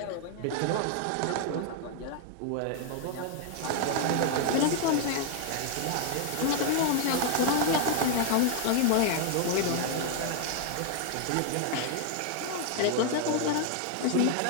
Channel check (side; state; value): both; different; correlation 0.00